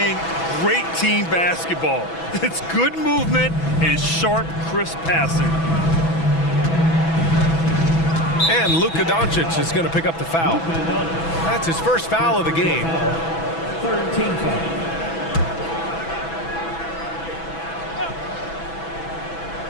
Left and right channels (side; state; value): right; late; 6.1 ms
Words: great team basketball. It's good movement and sharp, crisp passing. And Luka Doncic is going to pick up the foul. That's his first foul of the game. 13 foul.